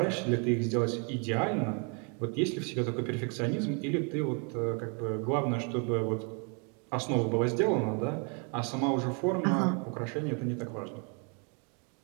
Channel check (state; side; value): quieter; left; 37.2 dB